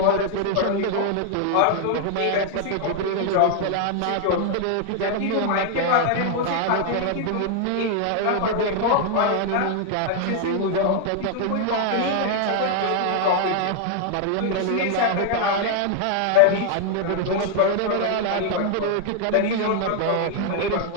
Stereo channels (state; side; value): different; both; correlation 0.00